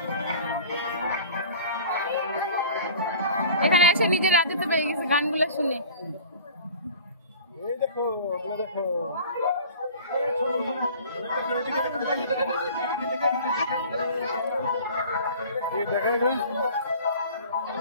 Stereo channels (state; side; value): inverted; both; correlation -0.43